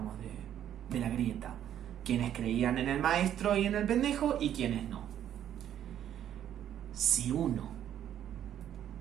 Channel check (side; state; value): left; quieter; 10.5 dB